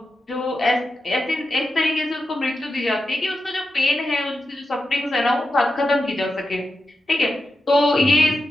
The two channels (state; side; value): normal; both; correlation 0.89